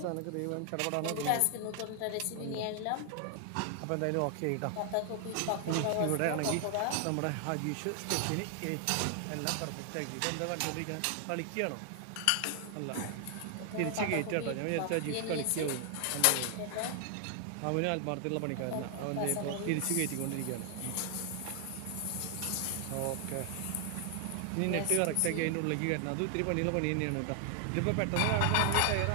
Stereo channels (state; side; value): different; both; correlation 0.00